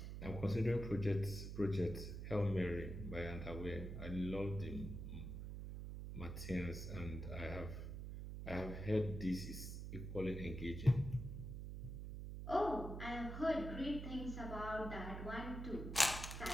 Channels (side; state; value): right; noise; hum, 6 dB below the sound